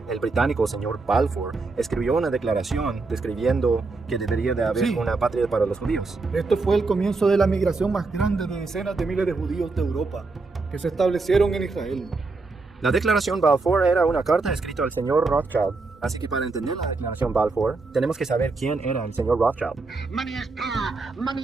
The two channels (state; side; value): quieter; left; 3.8 dB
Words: El británico señor Balfour escribió una declaración describiendo que debería de haber una patria para los judíos. Esto fue el comienzo de la migración más grande de decenas de miles de judíos de Europa, que se establecieron en Israel. La declaración Balfour era una carta escrita al señor Rothschild, así que para entender la declaración Balfour, tenemos que saber quién era el señor Rothschild. Money is power. Money